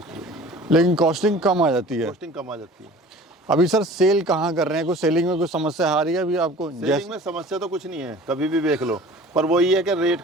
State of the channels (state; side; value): normal; both; correlation 0.44